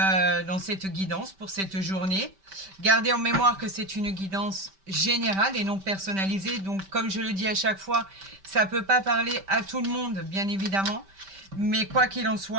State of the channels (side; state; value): left; late; 5.1 ms